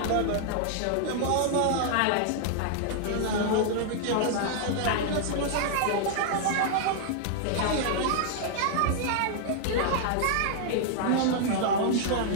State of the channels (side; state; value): both; different; correlation -0.01